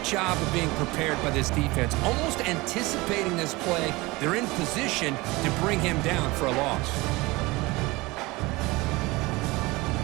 job of being prepared by this defense. Almost anticipating this play, they're in position to bring him down for a loss.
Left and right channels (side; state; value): left; quieter; 22.4 dB